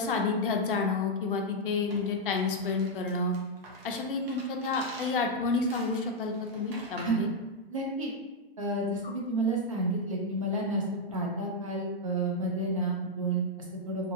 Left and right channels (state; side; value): normal; both; correlation -0.01